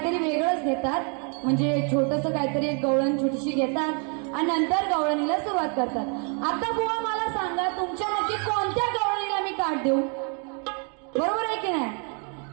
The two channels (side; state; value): left; quieter; 39.2 dB